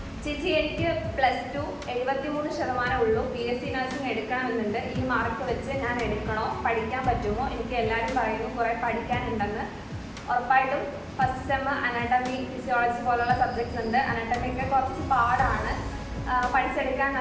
ചേച്ചി, എനിക്ക് +2 73% ഉള്ളൂ. BSc നഴ്സിംഗ് എടുക്കണമെന്നുണ്ട്. ഈ മാർക്ക് വെച്ച് ഞാൻ എടുക്കണോ? പഠിക്കാൻ പറ്റുമോ? എനിക്ക് എല്ലാവരും പറയുന്നു കുറേ പഠിക്കാനുണ്ടെന്ന്. ഉറപ്പായിട്ടും ഫസ്റ്റ് സെമ്മ് അനാട്ടമി, ഫിസിയോളജി പോലുള്ള സബ്ജക്ട്സ് ഉണ്ട്. അനാട്ടമിയൊക്കെ കുറച്ച് പാടാണ്, പഠിച്ചെടുക്കാൻ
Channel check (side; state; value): both; identical; correlation 1.00